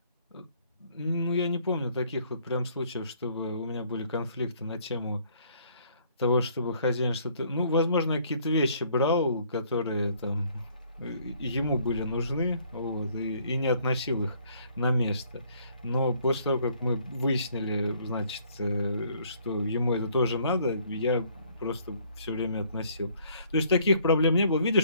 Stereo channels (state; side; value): inverted; both; correlation -0.63